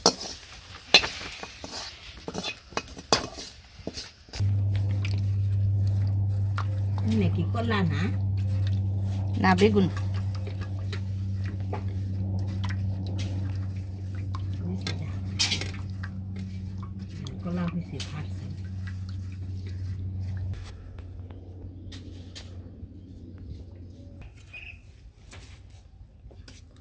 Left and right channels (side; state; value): both; identical; correlation 1.00